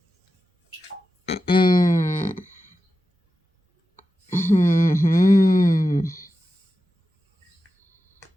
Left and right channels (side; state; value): both; normal; correlation 0.92